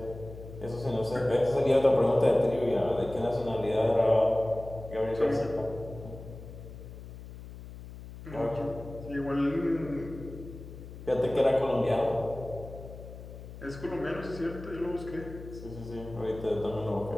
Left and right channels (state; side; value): noise; left; hum, 14 dB below the sound